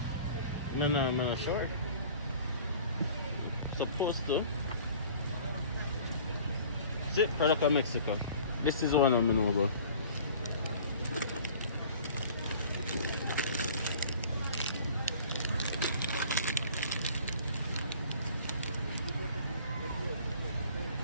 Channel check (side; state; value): both; inverted; correlation -0.47